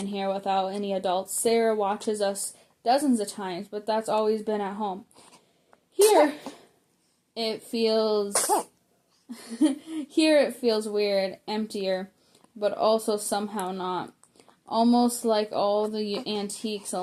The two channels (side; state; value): both; identical; correlation 1.00